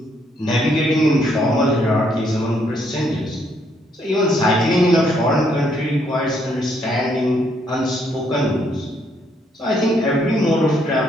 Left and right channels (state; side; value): normal; both; correlation 0.71